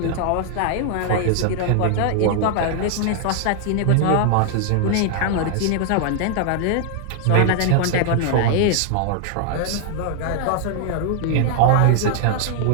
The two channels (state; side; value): different; both; correlation 0.00